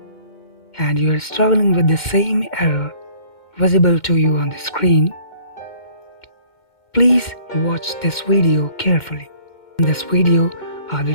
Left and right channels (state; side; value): late; right; 2.1 ms